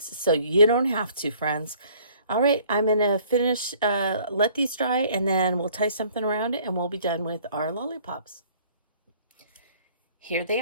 so you don't have to, friends. All right, I'm going to finish, let these dry, and then we'll tie something around it, and we'll be done with our lollipops. Here they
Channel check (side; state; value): both; inverted; correlation -0.57